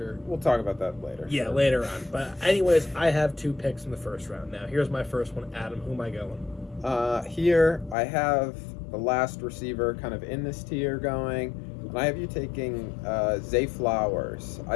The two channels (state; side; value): drops out; right; at 8.0 s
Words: We'll talk about that later. Yeah, later on. But anyways, I have 2 picks in the first round. Now, here's my first one. Adam, who am I going? Here, I have the last receiver kind of in this tier going, and I have you taking Zay Flowers.